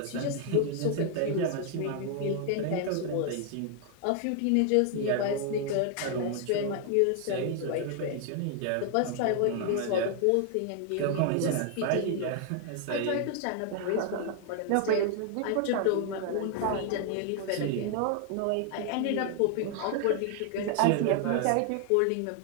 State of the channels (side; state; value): both; different; correlation 0.00